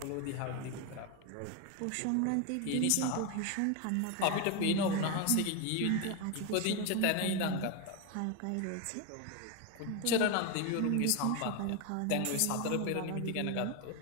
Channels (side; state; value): both; different; correlation 0.02